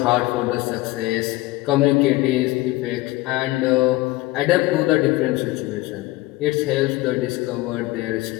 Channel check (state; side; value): quieter; right; 19.4 dB